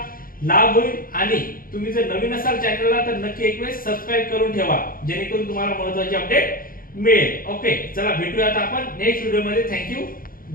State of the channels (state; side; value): late; right; 0.41 ms